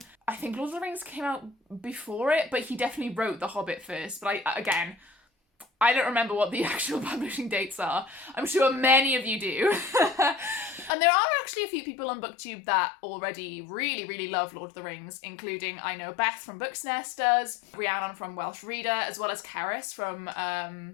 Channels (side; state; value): right; drops out; at 10.9 s